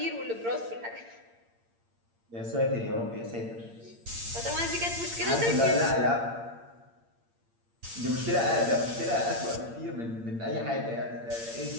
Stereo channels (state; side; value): late; left; 8.7 ms